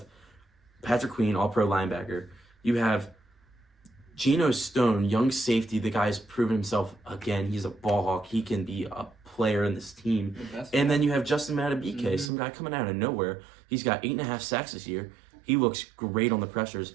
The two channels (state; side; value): drops out; left; at 12.3 s